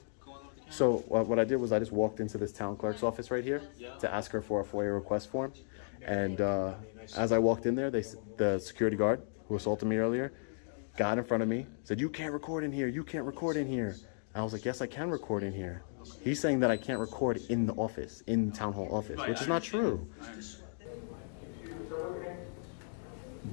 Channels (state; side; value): silent; right; digital silence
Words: going over the counter? So what I did was I just walked into this town clerk's office right here to ask her for a FOIA request form. And as I walked in there, the security guard who assaulted me earlier got in front of me, said, "You can't record in here, you can't record in here." I was like, "Yes, I can record in here." He's saying that I can't record in the office, in town hall office, which is not true.